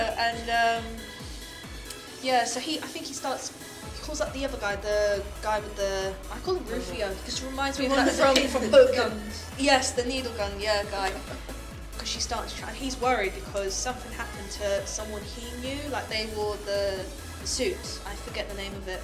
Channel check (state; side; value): identical; both; correlation 1.00